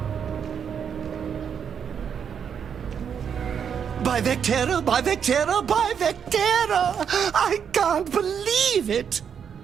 By Vectera, by Vectera, by Vectera! I can't believe it!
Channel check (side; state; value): left; quieter; 7.6 dB